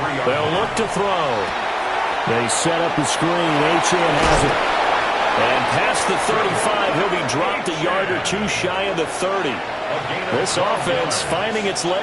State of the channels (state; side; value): identical; both; correlation 1.00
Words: They'll look to throw. They set up the screen. H.M. has it. And past the 35, he'll be dropped a yard or 2 shy of the 30. This offense finding its